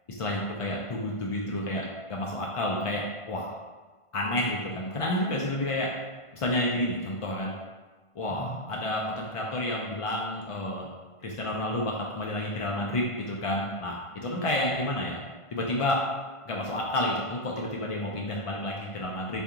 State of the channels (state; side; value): late; right; 1.5 ms